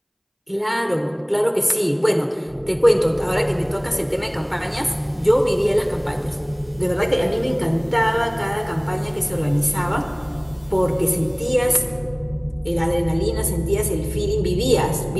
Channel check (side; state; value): both; identical; correlation 1.00